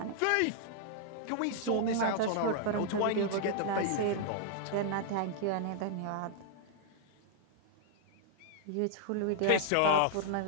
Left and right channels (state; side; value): different; both; correlation 0.00